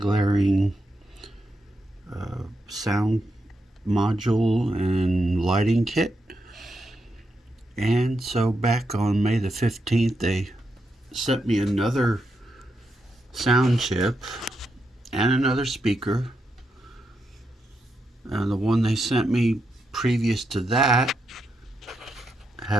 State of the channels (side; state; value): both; normal; correlation 0.84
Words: sound module and lighting kit. And so back on May the 15th, they sent me another sound chip and another speaker. And the one they sent me previous to that